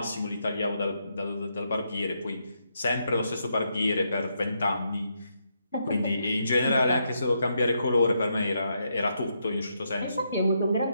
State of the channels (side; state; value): both; inverted; correlation -0.80